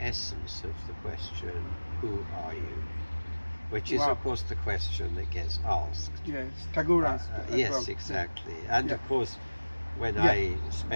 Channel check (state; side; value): inverted; both; correlation -1.00